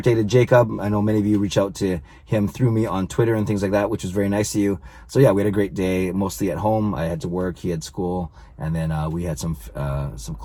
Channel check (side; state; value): both; identical; correlation 1.00